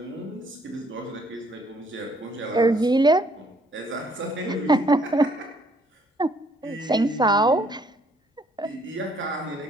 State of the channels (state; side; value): normal; both; correlation 0.65